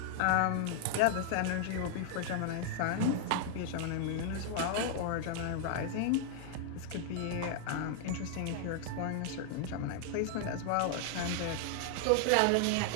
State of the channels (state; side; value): different; both; correlation 0.00